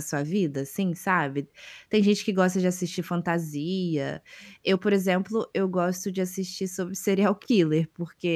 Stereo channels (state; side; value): identical; both; correlation 1.00